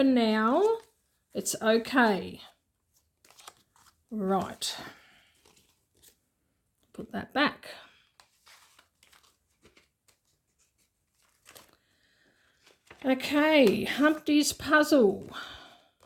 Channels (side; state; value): both; identical; correlation 1.00